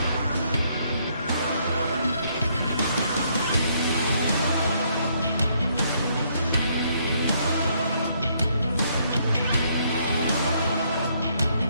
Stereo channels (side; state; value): both; inverted; correlation -0.70